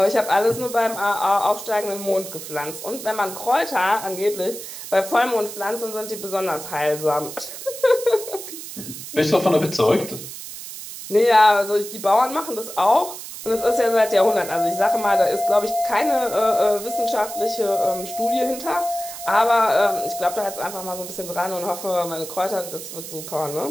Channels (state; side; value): noise; right; hiss, 11 dB below the sound